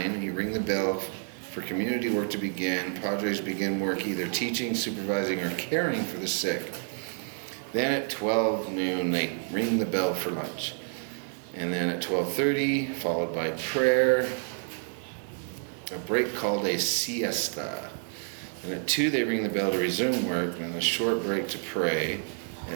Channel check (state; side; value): silent; left; 56 dB below the other